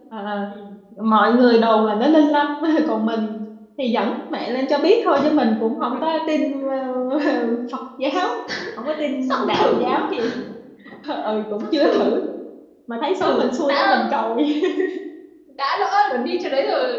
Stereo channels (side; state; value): both; identical; correlation 1.00